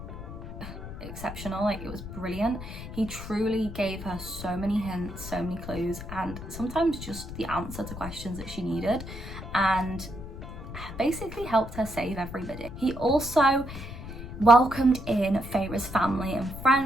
exceptional. Like, it was brilliant. He truly gave her so many hints, so many clues, and sometimes just the answer to questions that she needed, and basically helped her save everybody. He also welcomed in Feyre's family and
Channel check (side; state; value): left; noise; rumble, 10 dB below the sound